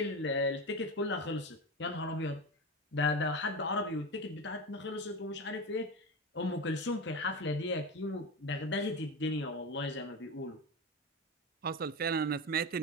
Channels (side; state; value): both; normal; correlation 0.21